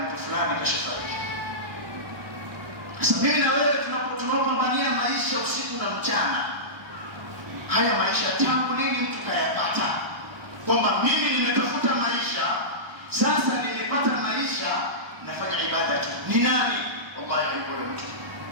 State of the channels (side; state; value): left; late; 1.1 ms